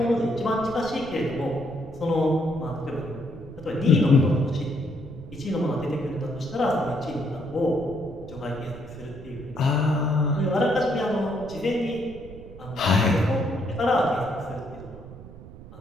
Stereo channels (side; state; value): right; noise; rumble, 16 dB below the sound